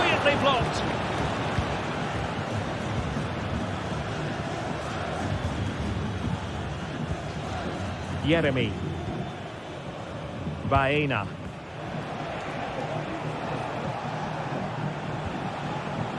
blocked. Yeremy. Baena.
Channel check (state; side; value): identical; both; correlation 1.00